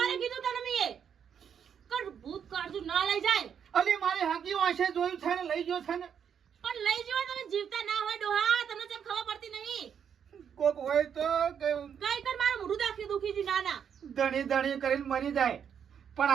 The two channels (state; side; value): quieter; left; 7.9 dB